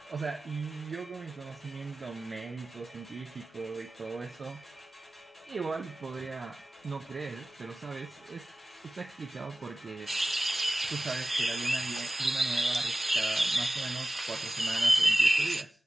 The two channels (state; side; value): normal; both; correlation 0.97